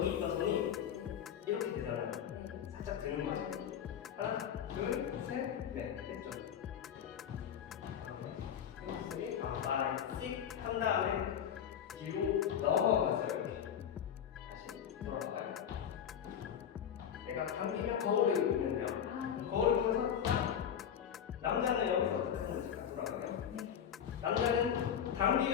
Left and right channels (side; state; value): right; quieter; 8.8 dB